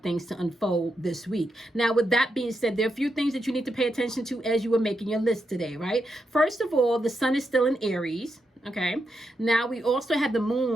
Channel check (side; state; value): both; normal; correlation 0.84